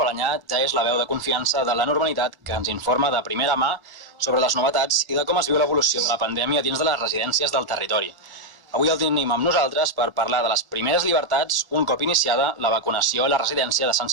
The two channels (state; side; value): late; left; 1.1 ms